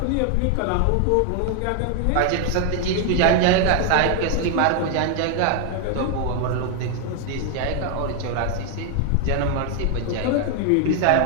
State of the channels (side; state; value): both; different; correlation 0.00